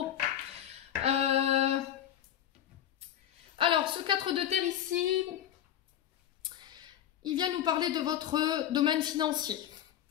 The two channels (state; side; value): quieter; right; 10.9 dB